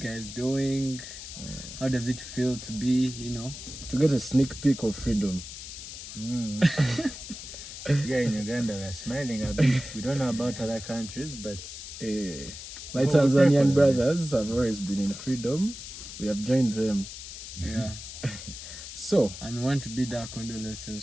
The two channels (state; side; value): noise; left; hiss, 11 dB below the sound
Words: doing? How does it feel to be, to get a sneak peek of freedom. Here in Uganda, we're smiling a bit. We don't know about other countries, but My Tanzanian brothers have always been in freedom. We have joined them. Yeah. So, And want to bid our